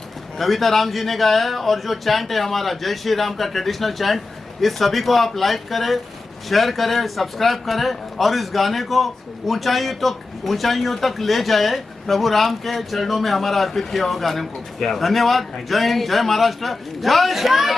कविता राम जी ने गाया है, और जो चैंट है हमारा जय श्री राम का ट्रेडिशनल चैंट, इस सभी को आप लाइक करें, शेयर करें, सब्सक्राइब करें, और इस गाने को ऊंचाइयों तक ले जाए, प्रभु राम के चरणों में हमारा अर्पित किया हुआ गाने को। धन्यवाद। जय हिंद, जय महाराष्ट्र, जय श्री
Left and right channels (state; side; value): quieter; right; 3.5 dB